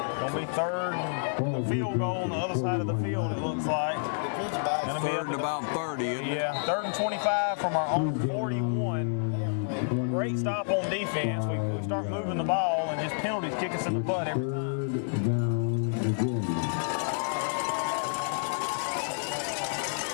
be 3rd and field goal on the other side of the field, it looks like. Gonna be 3rd and about 30, isn't it? Yeah, 3rd and 25 from our own 41. Great stop on defense. We start moving the ball and just penalties kick us in the butt every time.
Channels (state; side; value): silent; right; digital silence